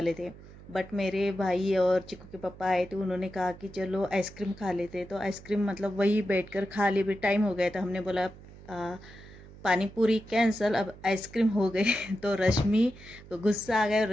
थे। बट मेरे भाई और चिकू के पापा आए थे, उन्होंने कहा कि चलो आइसक्रीम खा लेते। तो आइसक्रीम मतलब वही बैठकर खा लिए, भी टाइम हो गया था। हमने बोला पानी पूरी कैंसल, अब आइसक्रीम हो गई। तो रश्मि को गुस्सा आ गया और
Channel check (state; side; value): noise; right; hum, 19 dB below the sound